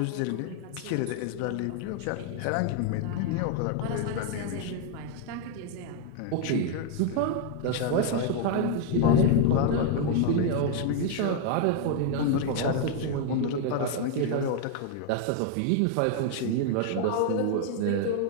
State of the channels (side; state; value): both; different; correlation 0.00